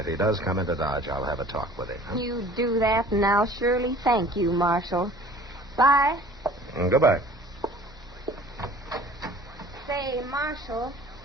he does come into Dodge, I'll have a talk with him. Huh? You do that, and I'll surely thank you, Marshal. Bye. Goodbye. Say, Marshal,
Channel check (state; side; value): normal; both; correlation 0.48